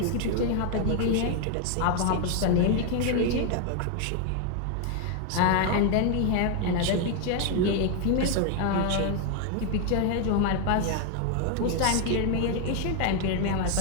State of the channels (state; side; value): different; both; correlation 0.01